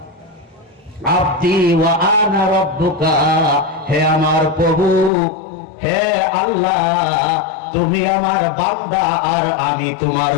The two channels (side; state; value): right; drops out; at 5.1 s